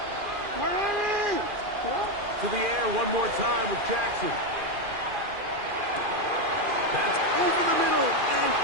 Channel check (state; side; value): late; left; 2.4 ms